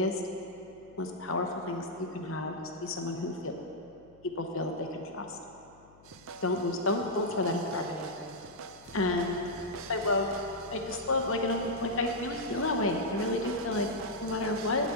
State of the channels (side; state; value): left; noise; hum, 26 dB below the sound